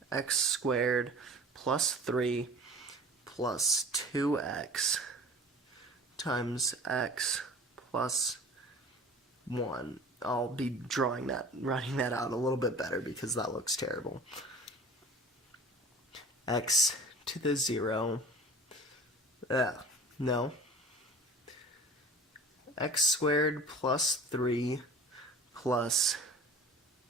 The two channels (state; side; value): normal; both; correlation 0.42